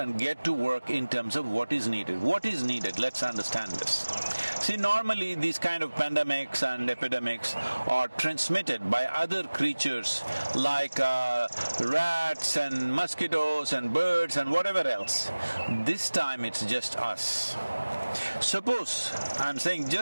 get to work in terms of what is needed. What is needed? Let's understand this. See, normally these kind of pandemics and epidemics are transmitted by other creatures like rats and mosquitoes and birds and whatever else. This time it's just us. Suppose, I'm saying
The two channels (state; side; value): inverted; both; correlation -1.00